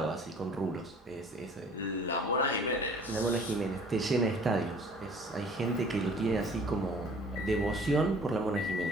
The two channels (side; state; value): both; normal; correlation 0.51